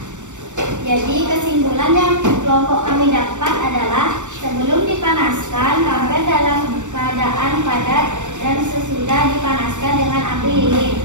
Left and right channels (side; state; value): left; late; 0.85 ms